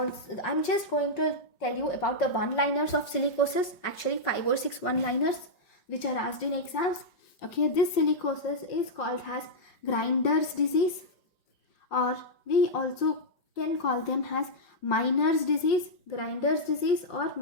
I'm just going to tell you about the one-liners of silicosis, actually 5 or 6 one-liners which are asked in exams. Okay, this silicosis is called as grinder's disease, or we also can call them as miner's disease, grinder's disease or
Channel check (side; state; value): right; late; 5.2 ms